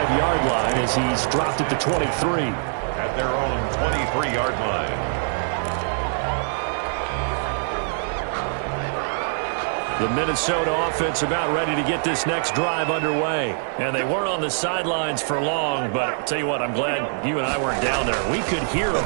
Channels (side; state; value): left; silent; digital silence